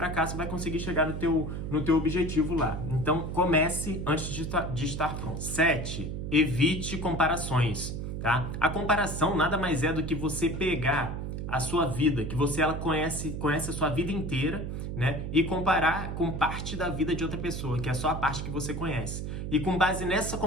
vai conseguir chegar no teu objetivo lá. Então comece antes de estar pronto. 7. Evite comparações. Tá? A comparação nada mais é do que você pegar a sua vida, que ela conhece a sua vida inteira, né? E comparar com parte da vida de outra pessoa, que é só a parte que você conhece. E com base nessa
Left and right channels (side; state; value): right; noise; hum, 5 dB below the sound